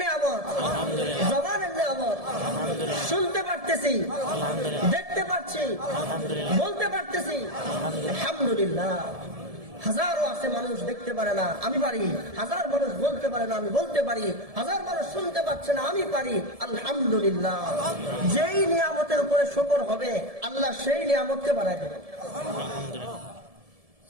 নিয়ামত, জবানের নিয়ামত, শুনতে পারতেছি, দেখতে পাচ্ছি, বলতে পারতেছি, আলহামদুলিল্লাহ। হাজারো আছে মানুষ দেখতে পারে না, আমি পারি। হাজার মানুষ বলতে পারে না, আমি বলতে পারি। হাজার মানুষ শুনতে পাচ্ছে না, আমি পারি। আলহামদুলিল্লাহ। যেই নিয়ামতের উপরে শুকর হবে আল্লাহ সেই নিয়ামতকে বাড়ায় দেবেন।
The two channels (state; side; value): late; left; 1.7 ms